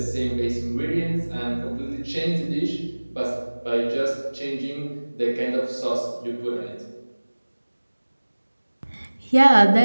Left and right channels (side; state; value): both; inverted; correlation -1.00